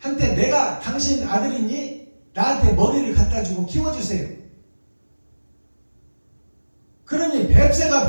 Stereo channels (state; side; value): inverted; both; correlation -1.00